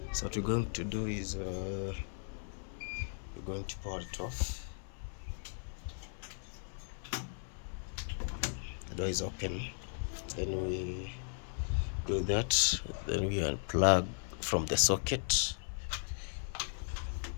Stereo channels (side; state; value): right; silent; 53 dB below the other